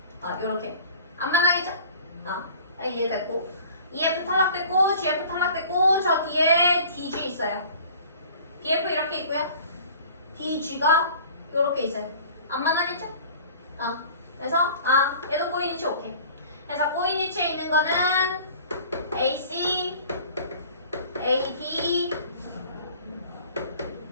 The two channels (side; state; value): both; inverted; correlation -0.46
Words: 요렇게. 안 만나겠죠? 이해됐고. EF 탈락됐고, GF 탈락됐고, 저 뒤에 DG 있어요. BF 이렇게 있고요. DG가 요렇게 있어요. 안 만나겠죠? 그래서, 얘도 꼬이니치 오케이. 그래서 꼬이니치에 있는 거는 AC, AD,